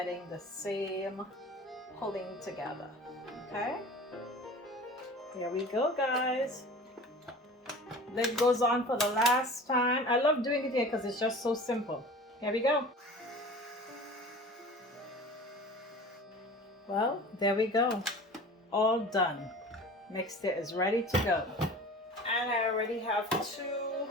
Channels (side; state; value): both; normal; correlation 0.39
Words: the same pulling together. Okay, here we go, guys. Lid goes on for the last time. I love doing it here because it's just so simple. Here we go. Well, there we go. All done. Mixture is ready to go. And I already have 2